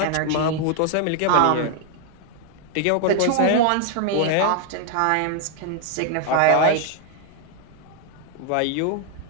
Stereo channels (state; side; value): different; both; correlation 0.00